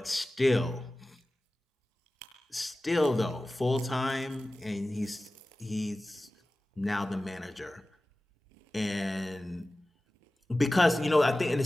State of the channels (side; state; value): both; normal; correlation 0.96